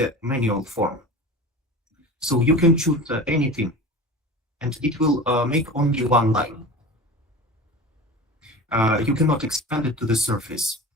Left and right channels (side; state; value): both; normal; correlation 0.34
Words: manual form. So you can choose anything, and it will make only one line. You cannot expand it to the surface.